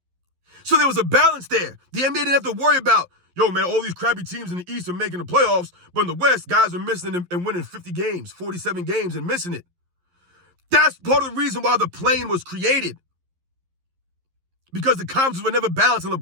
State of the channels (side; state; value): left; late; 11 ms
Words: So there was a balance there. The NBA didn't have to worry about, yo, man, all these crappy teams in the East are making the playoffs, but in the West, guys are missing and winning 50 games, 47 games and missing it. That's part of the reason why the play-in was created. Because the conferences were never balanced in